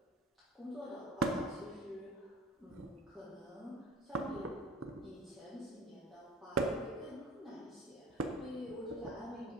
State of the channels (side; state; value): both; normal; correlation 0.41